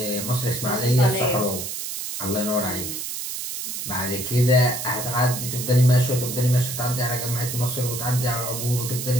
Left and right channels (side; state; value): right; noise; hiss, 5 dB below the sound